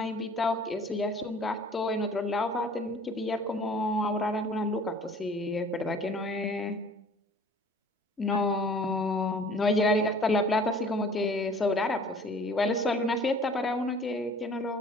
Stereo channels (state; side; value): normal; both; correlation 0.50